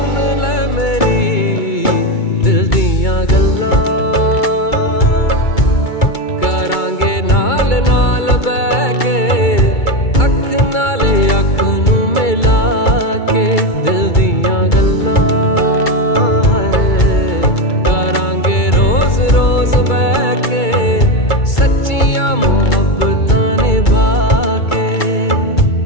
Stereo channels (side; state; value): right; late; 2.3 ms